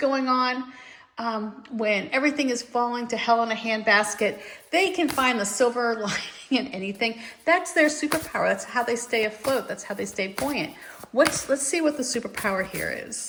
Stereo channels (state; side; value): identical; both; correlation 1.00